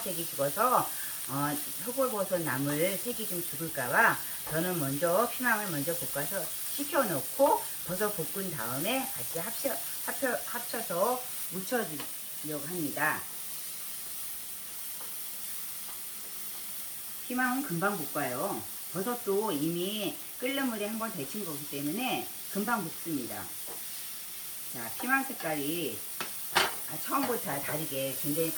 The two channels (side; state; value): both; identical; correlation 1.00